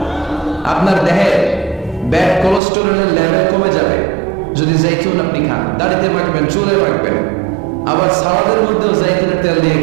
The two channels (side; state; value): left; drops out; at 2.6 s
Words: আপনার দেহে ব্যাড কোলেস্টেরলের লেভেল কমে যাবে যদি জাইতুন আপনি খান। দাড়িতে মাখবেন, চুলে মাখবেন। আবার সালাদের মধ্যেও জাইতুনের তেল দিয়ে